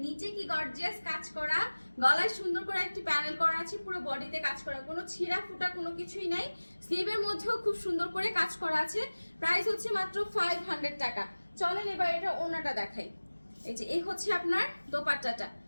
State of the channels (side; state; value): both; inverted; correlation -1.00